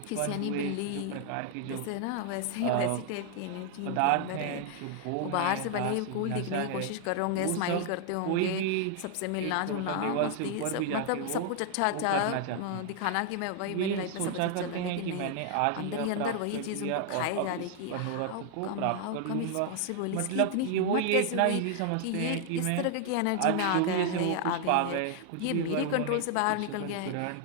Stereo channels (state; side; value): different; both; correlation 0.00